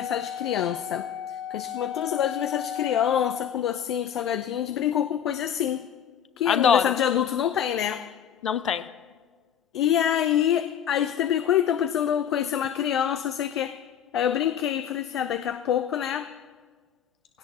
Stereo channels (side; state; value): right; quieter; 9.2 dB